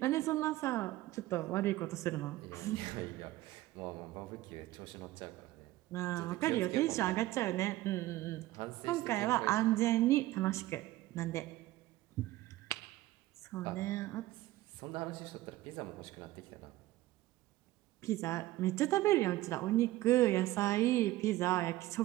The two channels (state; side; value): quieter; left; 16.6 dB